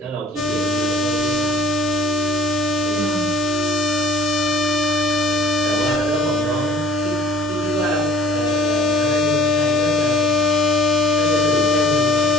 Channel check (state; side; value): normal; both; correlation 0.51